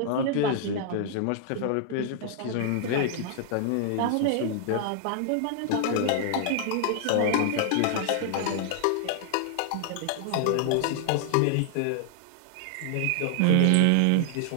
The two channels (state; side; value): different; both; correlation -0.01